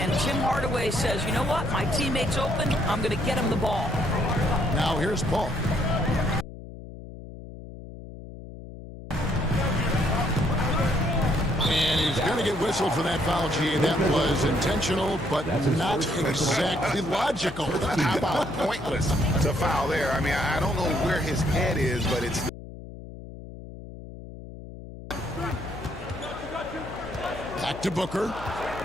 Tim Hardaway says, you know what, my teammate's open, I'm going to get him the ball. Now here's Paul. And he's going to get whistled for that foul, G. That was intentional, but not exactly logical. How about pointless to foul there? I mean, I don't know where his head is, but it's... Back to Booker.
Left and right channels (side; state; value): left; noise; hum, 13 dB below the sound